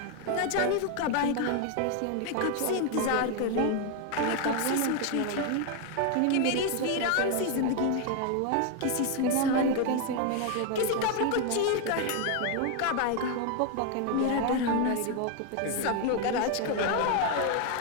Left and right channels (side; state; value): both; different; correlation 0.01